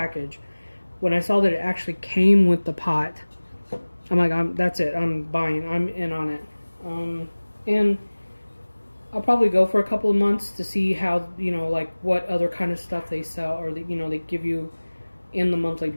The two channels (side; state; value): both; inverted; correlation -1.00